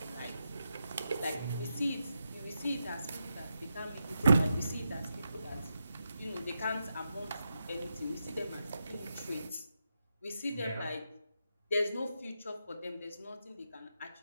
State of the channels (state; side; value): inverted; both; correlation -0.86